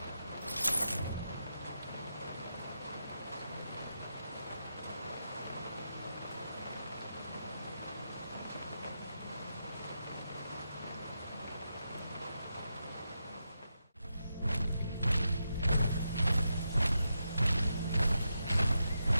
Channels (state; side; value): inverted; both; correlation -0.86